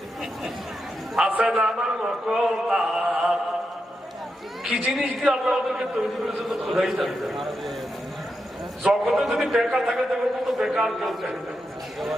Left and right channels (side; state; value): both; normal; correlation 0.86